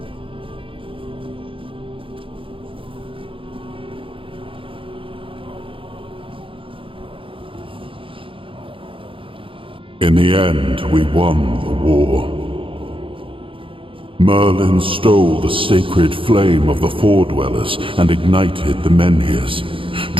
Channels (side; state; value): left; late; 0.25 ms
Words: In the end, we won the war. Merlin stole the sacred flame of the Four Dwellers and ignited the Menhirs,